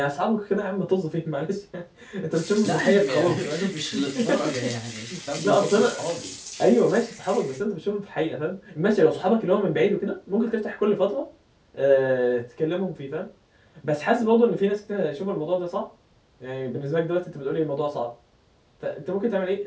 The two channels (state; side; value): identical; both; correlation 1.00